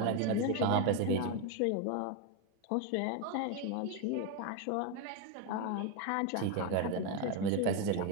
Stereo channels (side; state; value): both; different; correlation 0.02